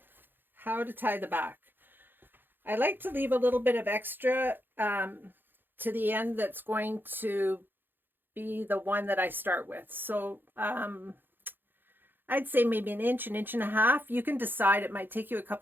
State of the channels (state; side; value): late; left; 0.096 ms